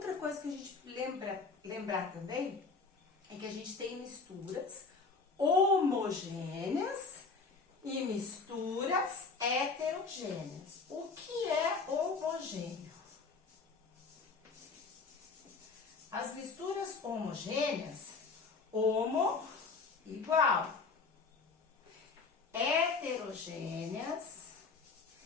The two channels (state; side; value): quieter; right; 4.4 dB